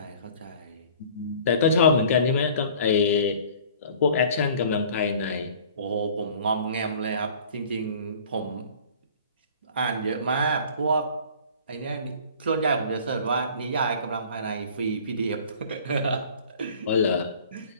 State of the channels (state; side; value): inverted; both; correlation -0.48